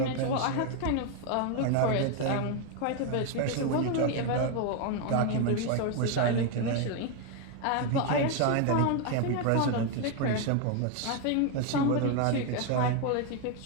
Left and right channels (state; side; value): different; both; correlation 0.01